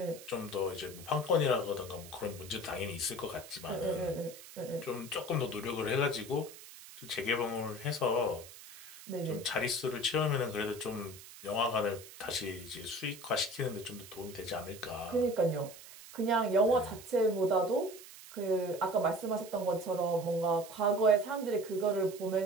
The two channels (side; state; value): right; noise; hiss, 16 dB below the sound